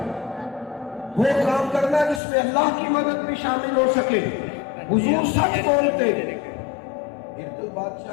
وہ کام کرنا جس میں اللہ کی مدد بھی شامل ہو سکے. حضور سچ بولتے. ارتل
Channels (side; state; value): right; drops out; at 2.2 s